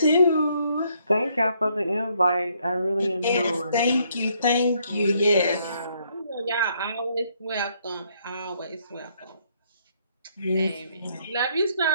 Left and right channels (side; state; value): both; inverted; correlation -0.70